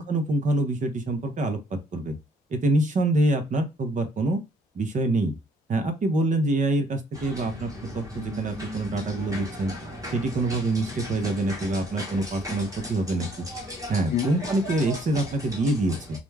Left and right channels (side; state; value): both; normal; correlation 0.64